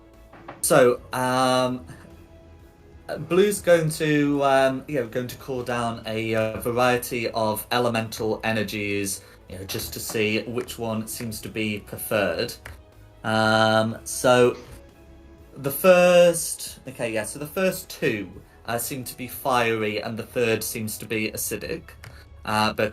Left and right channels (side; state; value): both; identical; correlation 1.00